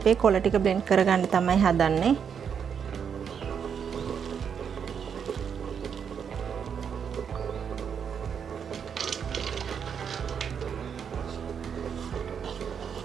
කොළ ටික බ්ලෙන්ඩ් කරගන්න තමයි හදන්නේ.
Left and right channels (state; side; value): quieter; left; 7.3 dB